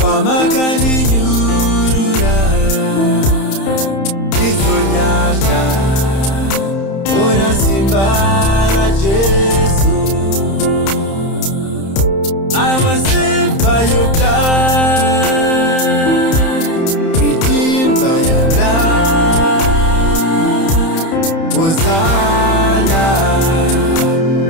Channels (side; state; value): right; late; 31 ms